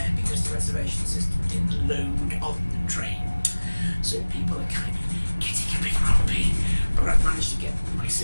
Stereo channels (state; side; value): inverted; both; correlation -1.00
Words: because the reservation system didn't load on the train. So people are kind of getting a bit grumpy. But I've managed to get my